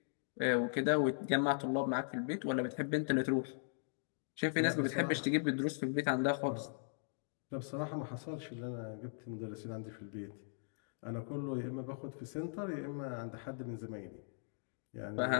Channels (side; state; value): right; silent; digital silence